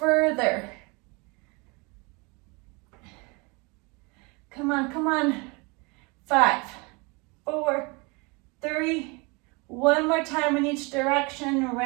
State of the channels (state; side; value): quieter; left; 28.7 dB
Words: Come on, come on. 5, 4, 3, one more time in each direction,